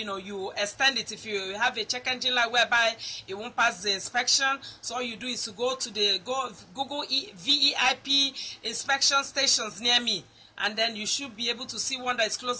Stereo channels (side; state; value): both; identical; correlation 1.00